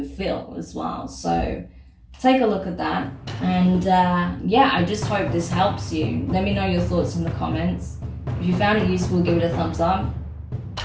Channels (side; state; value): both; identical; correlation 1.00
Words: feel as well. So take a look at that. And yeah, I just hope this helps you. Let me know your thoughts in the comments. If you found it useful, give it a thumbs up.